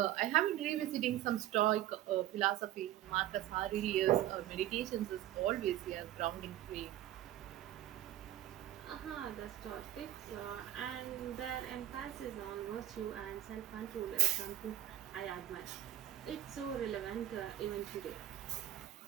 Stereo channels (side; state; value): left; quieter; 13.2 dB